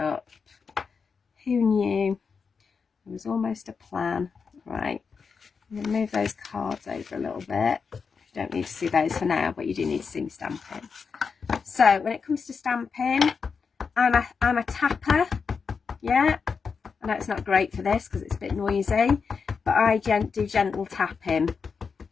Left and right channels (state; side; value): quieter; right; 5.5 dB